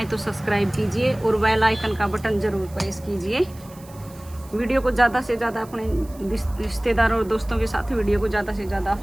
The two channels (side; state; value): right; noise; hiss, 23 dB below the sound